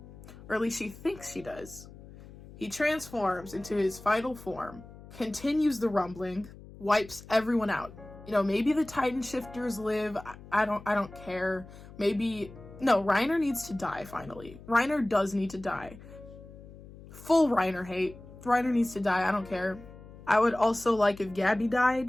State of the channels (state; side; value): noise; left; hum, 18 dB below the sound